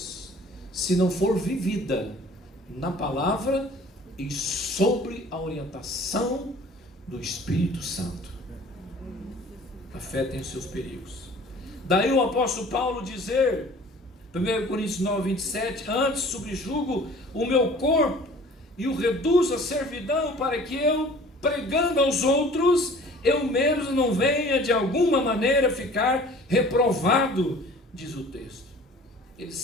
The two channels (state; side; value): normal; both; correlation 0.48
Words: se não for vivida na palavra e sobre a orientação do Espírito Santo. A fé tem os seus perigos. Daí o apóstolo Paulo dizer, 1 Coríntios 9, 27, antes subjugo o meu corpo e o reduzo à servidão, para que eu, pregando aos outros, eu mesmo não venha de alguma maneira ficar reprovado, diz o texto. Ele